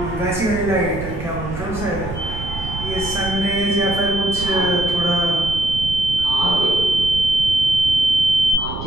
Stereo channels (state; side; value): noise; right; rumble, 9 dB below the sound